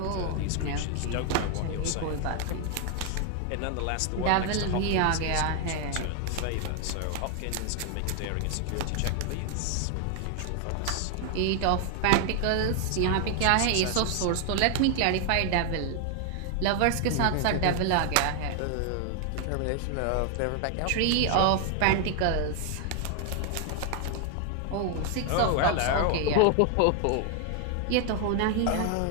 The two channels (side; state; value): both; different; correlation 0.00